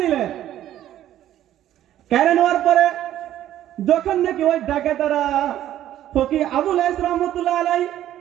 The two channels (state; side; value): quieter; left; 12.3 dB